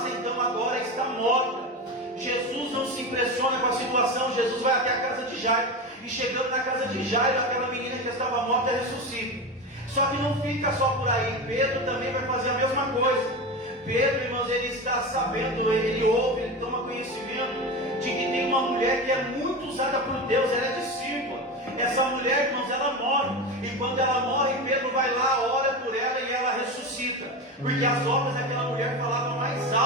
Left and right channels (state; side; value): normal; both; correlation 0.23